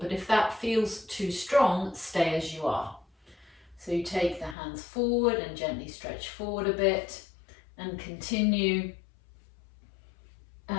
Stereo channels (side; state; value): right; drops out; at 4.5 s